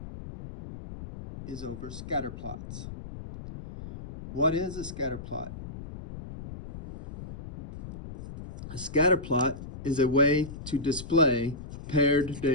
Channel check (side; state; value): left; noise; rumble, 12 dB below the sound